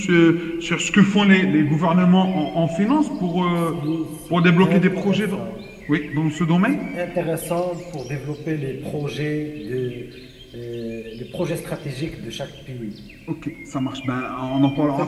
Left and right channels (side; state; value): both; identical; correlation 1.00